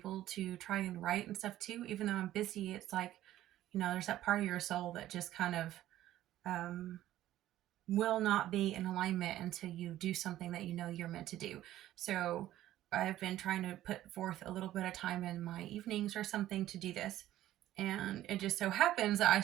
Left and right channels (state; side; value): quieter; left; 13.8 dB